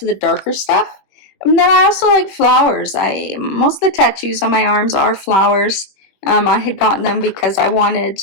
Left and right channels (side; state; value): right; late; 21 ms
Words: the darker stuff. And then I also like flowers. Most of the tattoos on my arms are flowers. I had gotten them because I